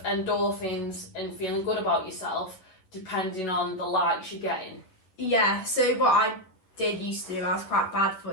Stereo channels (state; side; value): late; right; 11 ms